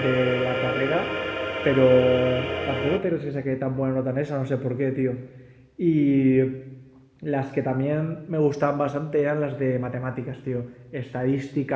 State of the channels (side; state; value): both; identical; correlation 1.00